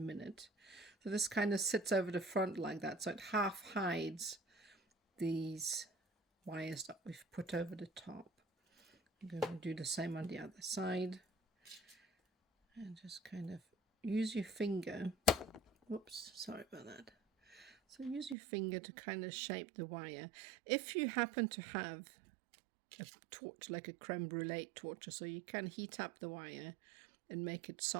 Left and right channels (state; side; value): drops out; left; at 18.4 s